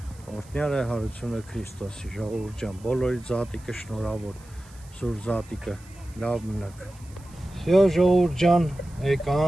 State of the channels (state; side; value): noise; right; hiss, 25 dB below the sound